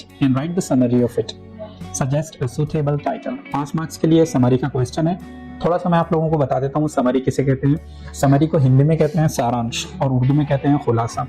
and write the summary of it. Suggest a suitable title. 5 marks के लिए समरी का क्वेश्चन है। थोड़ा सा मैं आप लोगों को बता देता हूँ समरी किसे कहते हैं। समरी को हिंदी में कहते हैं सारांश और उर्दू में कहते हैं खुलासा।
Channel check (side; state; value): both; identical; correlation 1.00